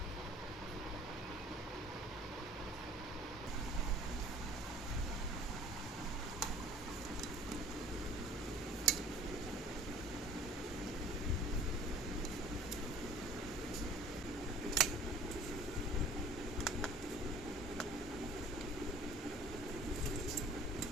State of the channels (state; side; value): normal; both; correlation 0.50